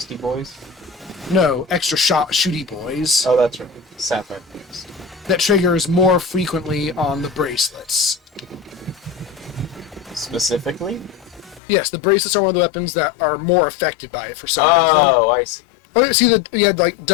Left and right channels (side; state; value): right; drops out; at 11.6 s